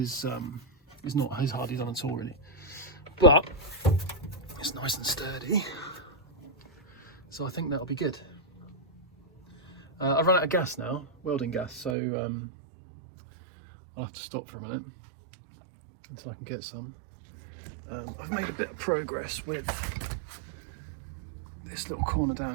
not as hardly done at all, really, but it's nice and sturdy. So I think that'll be good. I've run out of gas now, welding gas, so I'll have to stop for a minute until I can get some. I've made a bit of progress with this little corner down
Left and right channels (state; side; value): drops out; left; at 12.0 s